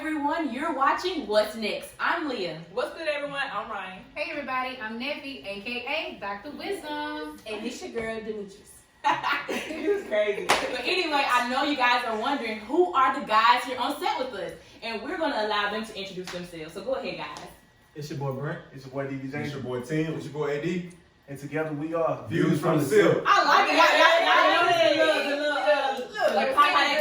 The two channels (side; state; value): both; identical; correlation 1.00